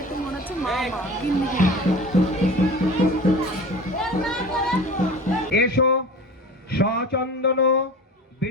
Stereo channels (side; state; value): both; normal; correlation 0.37